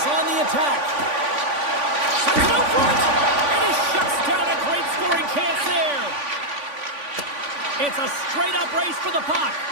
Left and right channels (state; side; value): late; left; 3.5 ms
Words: on the attack. Sends it out front. And he shuts down a great scoring chance there. It's a straight-up race for the puck.